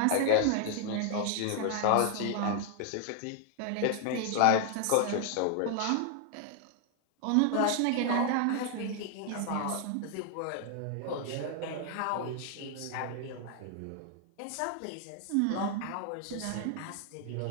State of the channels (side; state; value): both; different; correlation 0.00